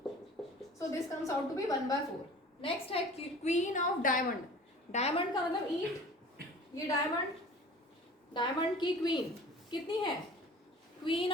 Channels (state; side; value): normal; both; correlation 0.43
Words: So this comes out to be 1/4। Next है क्वीन ऑफ डायमंड। डायमंड का मतलब ईट। ये डायमंड की क्वीन कितनी है? क्वीन